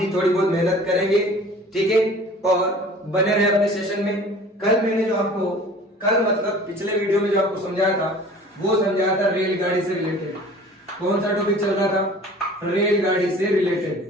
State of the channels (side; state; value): both; normal; correlation 0.46